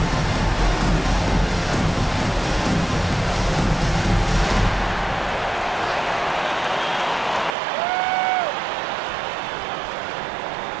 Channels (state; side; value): drops out; left; at 7.6 s